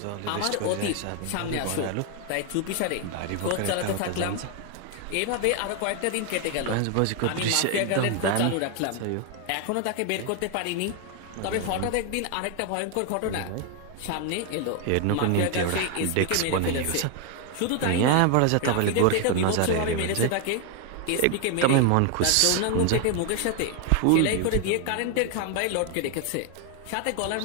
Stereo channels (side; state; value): both; different; correlation 0.01